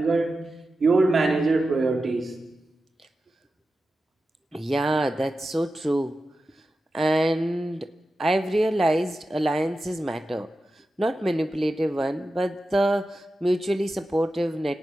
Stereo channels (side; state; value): both; normal; correlation 0.92